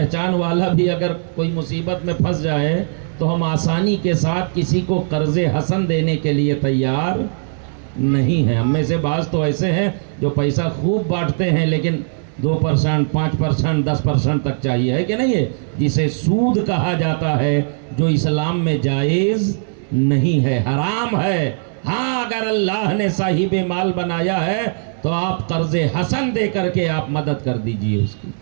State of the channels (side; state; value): left; silent; digital silence